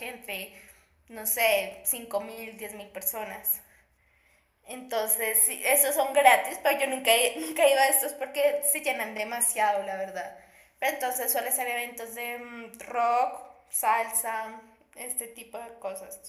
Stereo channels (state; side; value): identical; both; correlation 1.00